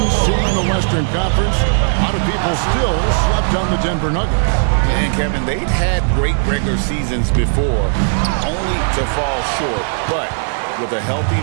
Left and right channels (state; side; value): silent; left; digital silence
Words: seed in the Western Conference. A lot of people still slept on the Denver Nuggets. And, Kevin, they've had great regular seasons before, only to fall short. But with a healthy